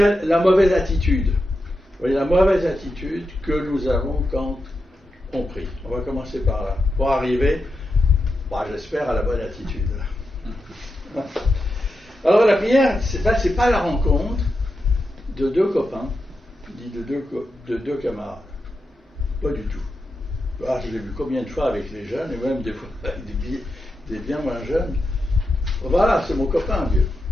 mauvaise attitude. Vous voyez, la mauvaise attitude que nous avons quand on prie. On va commencer par là, pour arriver, j'espère, à la bonne attitude. Alors la prière, c'est pas la rencontre de deux copains, ni de deux camarades. Pas du tout. Je l'ai vu combien de fois avec les jeunes, et même des fois avec des bien moins jeunes. Voilà, c'est mon copain, Dieu.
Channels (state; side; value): normal; both; correlation 0.88